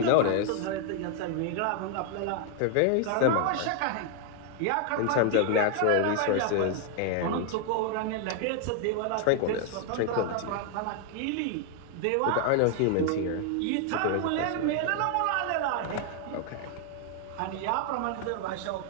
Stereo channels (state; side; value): different; both; correlation 0.00